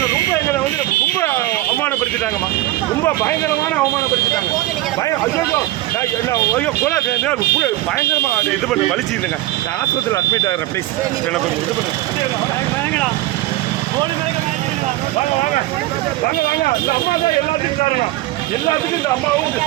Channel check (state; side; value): quieter; left; 16.6 dB